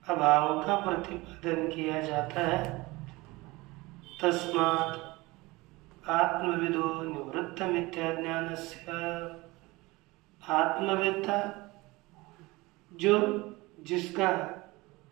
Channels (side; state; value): left; quieter; 22.1 dB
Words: अभाव का प्रतिपादन किया जाता है। तस्मात् आत्मविदो निवृत्त मिथ्या ज्ञानस्य, आत्मवेत्ता जो जिसका